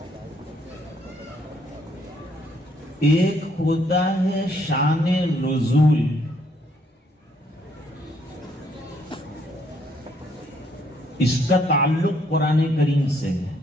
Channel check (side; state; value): both; normal; correlation 0.69